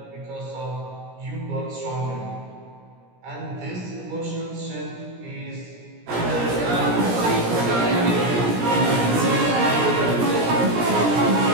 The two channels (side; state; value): left; late; 17 ms